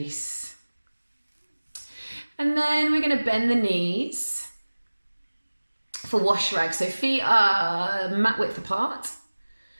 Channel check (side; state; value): both; inverted; correlation -1.00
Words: And then we're going to bend the knees for wash rag. So feet are mat width apart.